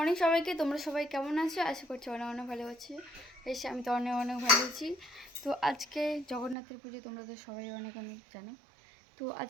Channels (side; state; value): left; drops out; at 6.6 s